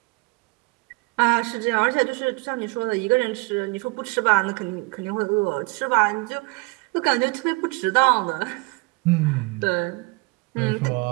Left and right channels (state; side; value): quieter; left; 27.5 dB